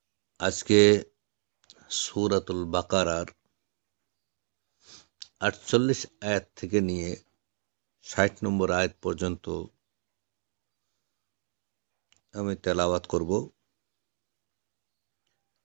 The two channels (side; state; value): left; silent; digital silence